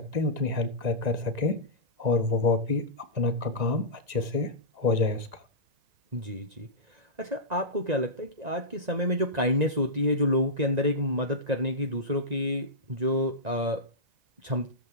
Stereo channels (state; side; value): late; left; 1.9 ms